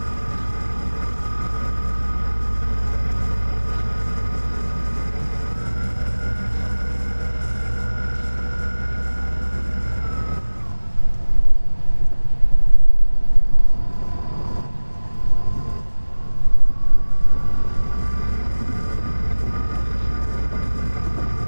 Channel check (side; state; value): both; inverted; correlation -1.00